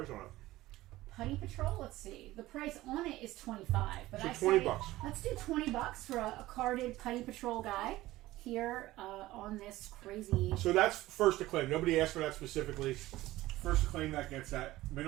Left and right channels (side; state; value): left; quieter; 17.0 dB